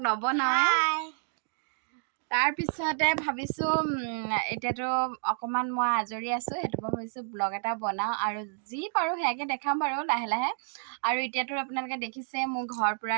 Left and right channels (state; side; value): silent; left; 58 dB below the other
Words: নবনাওঁৱে। তাৰপিছতে ভাবিছোঁ এতিয়াতো অকণমান মই আজৰি আছোঁ, সেইটো পৰা ভাবিছোঁ ব্লগ এটা বনাওঁ আৰু যি পাৰোঁ সেয়াকে দেখাম বাৰু লাহে লাহে। আৰু এতিয়াতো আপোনালোকে দেখিছে মোৰ ঘৰ পূৰা